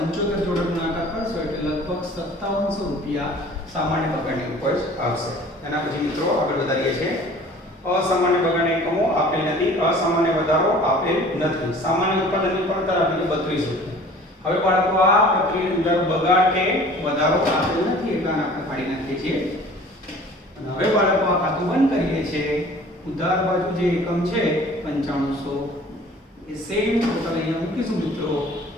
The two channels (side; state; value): both; normal; correlation 0.48